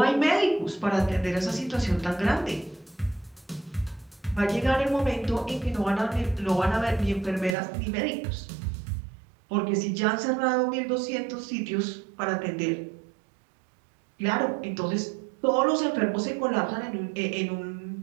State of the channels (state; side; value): drops out; left; at 7.6 s